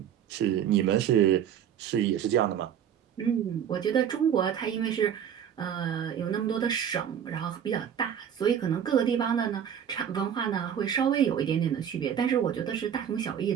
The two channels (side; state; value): left; quieter; 9.0 dB